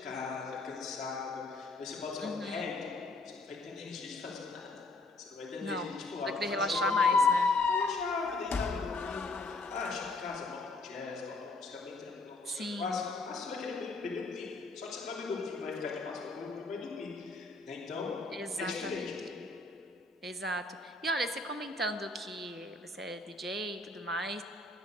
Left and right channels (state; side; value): quieter; right; 3.1 dB